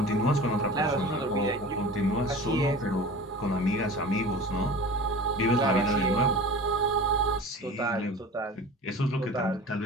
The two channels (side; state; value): both; normal; correlation 0.37